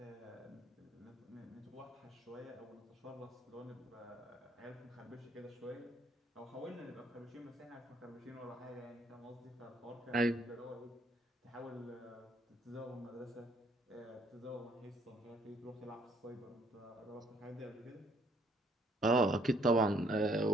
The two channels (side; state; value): both; normal; correlation 0.66